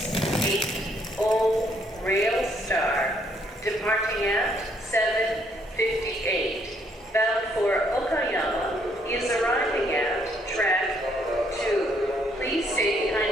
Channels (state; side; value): normal; both; correlation 0.69